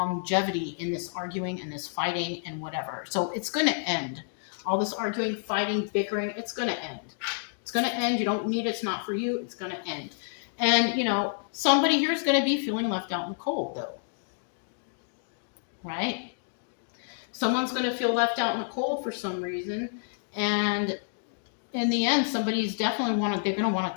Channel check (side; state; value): right; silent; digital silence